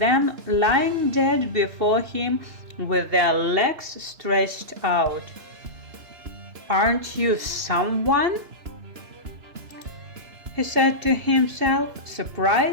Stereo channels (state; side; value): late; left; 2.7 ms